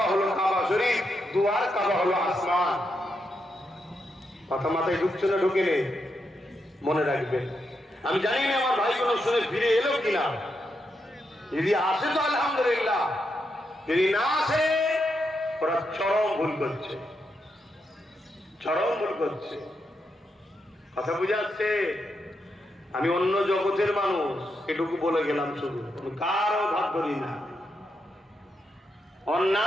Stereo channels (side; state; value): both; normal; correlation 0.83